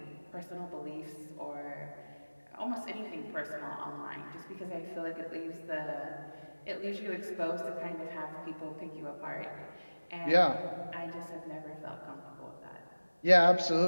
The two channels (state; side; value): inverted; both; correlation -1.00